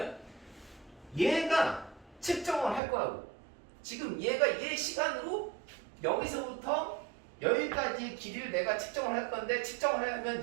얘가 측정을 할 거라고. 지금 얘 시간으로 여기서부터 여기까지 길이를 내가 측정을 할 건데 측정을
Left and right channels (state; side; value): drops out; left; at 2.8 s